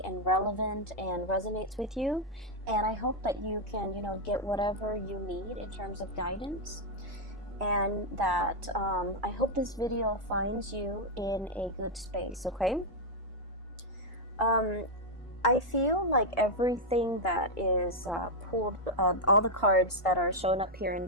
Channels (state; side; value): normal; both; correlation -0.01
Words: and relevant and resonates with you. And I hope that you can, get whatever you need in terms of guidance. And that I hope this video finds you in a good space, okay? I feel like everything that is pulled, all the cards that are shown up here in